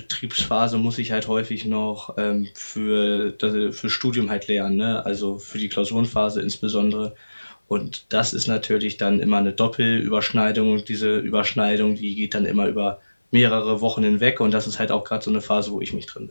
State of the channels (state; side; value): inverted; both; correlation -1.00